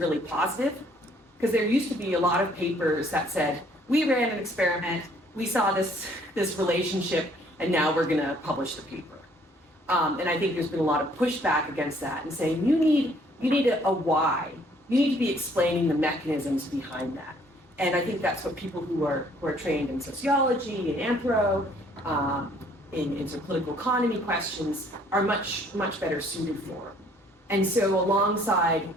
positive, because there used to be a lot of papers that said, we ran an experiment, we saw this relationship, and now we're gonna publish the paper. And I think there's been a lot of pushback against that and saying, you need a why. You need to be explaining the mechanisms behind that. And I think that's what people who are trained in sociology and anthro, in sort of political economy questions are much better suited for. And so alongside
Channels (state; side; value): normal; both; correlation 0.61